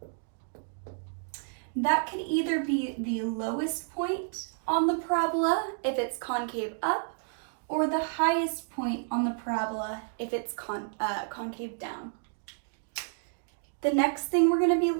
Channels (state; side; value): silent; left; digital silence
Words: That can either be the lowest point on the parabola if it's concave up, or the highest point on the parabola if it's concave down. The next thing we're going to be